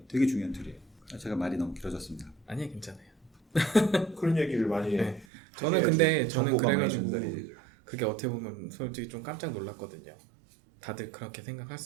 되게 중요한 툴이에요. 제가 말이 너무 길어졌습니다. 아니요, 괜찮아요. 그런 얘기를 많이 네. 저는 근데 저는 정보가 많이 그래가지고 전달이 되죠. 그게 어떻게 보면 솔직히 좀 깜짝 놀랐거든요. 다들 그렇게 생각할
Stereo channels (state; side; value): drops out; left; at 5.2 s